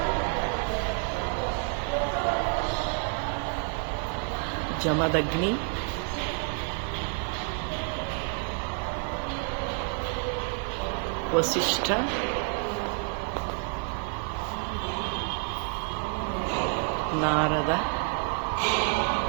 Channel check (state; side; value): quieter; left; 38.4 dB